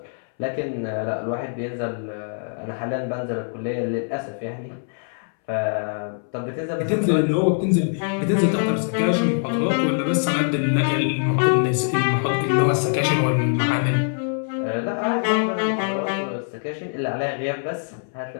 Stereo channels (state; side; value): silent; right; 63 dB below the other